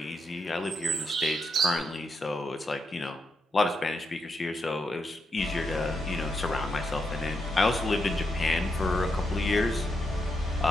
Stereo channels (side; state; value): both; normal; correlation 0.82